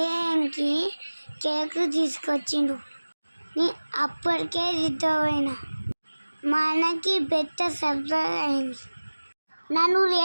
కేక్ తీసుకొచ్చిండు. అప్పటికే దిద్దపోయినా. మా అన్నకి పెద్ద సర్ప్రైజ్ అయింది. నన్ను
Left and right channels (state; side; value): inverted; both; correlation -1.00